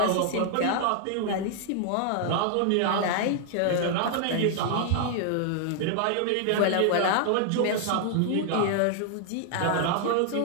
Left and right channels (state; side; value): different; both; correlation 0.00